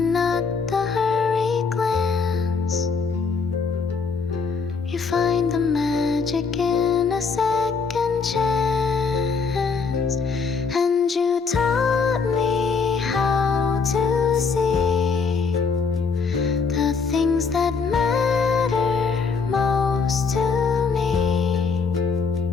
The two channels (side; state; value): right; quieter; 5.1 dB